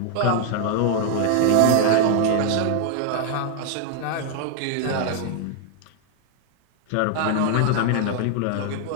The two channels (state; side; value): different; both; correlation 0.00